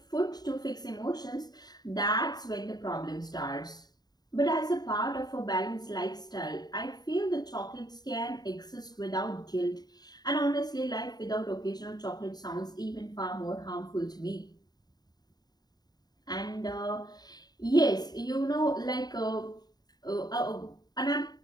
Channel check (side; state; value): right; late; 0.20 ms